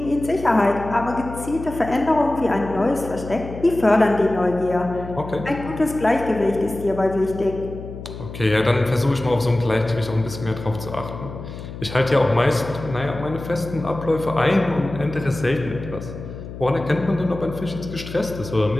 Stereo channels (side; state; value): left; noise; hum, 11 dB below the sound